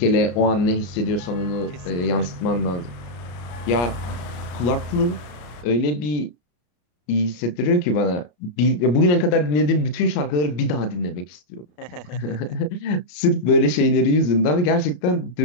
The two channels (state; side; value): late; right; 34 ms